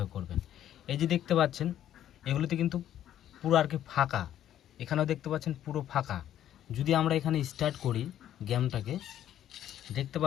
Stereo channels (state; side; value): quieter; right; 11.3 dB